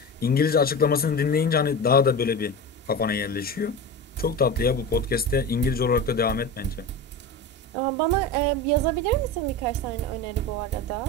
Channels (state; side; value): normal; both; correlation 0.26